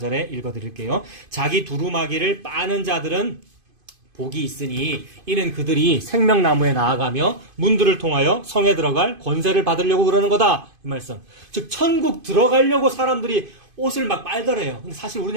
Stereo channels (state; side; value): late; left; 2.5 ms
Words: 읽어드릴게요. 자기 두루마기를 빠는 자들은 복이 있으니 이는 그들이 생명나무에 나아가며 문들을 통하여 성에 들어갈 권세를 받으려고 그러는 거다. 이 말씀. 즉 천국 들어가려고 사람들이 옷을 막 빨더래요. 근데 사실